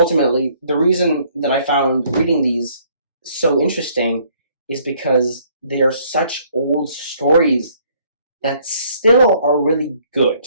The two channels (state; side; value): inverted; both; correlation -0.63